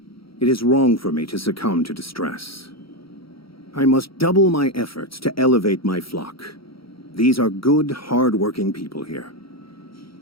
It is wrong for me to succumb to distress. I must double my efforts to elevate my flock. These are good, hard-working people here.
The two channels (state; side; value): late; right; 0.75 ms